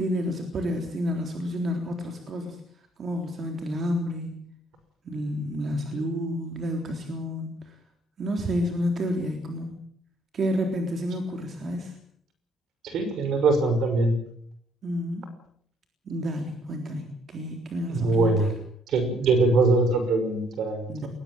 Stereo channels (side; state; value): both; normal; correlation 0.65